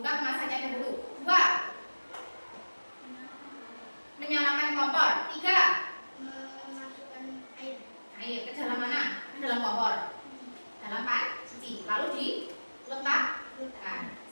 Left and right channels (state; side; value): inverted; both; correlation -1.00